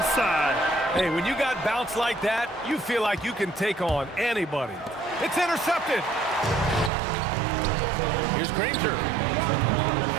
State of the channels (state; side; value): drops out; left; at 6.9 s